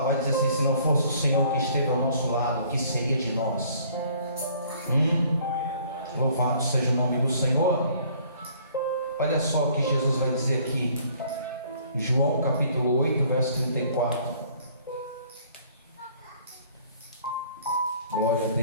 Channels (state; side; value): inverted; both; correlation -0.58